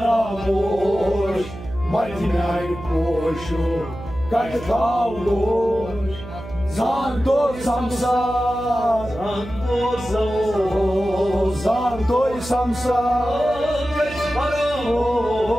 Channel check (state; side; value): noise; right; hum, 13 dB below the sound